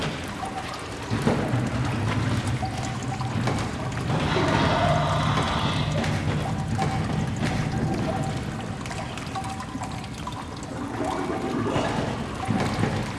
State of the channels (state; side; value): identical; both; correlation 1.00